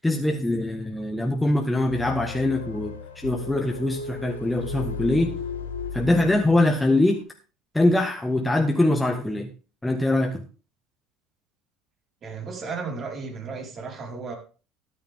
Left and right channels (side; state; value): both; normal; correlation 0.86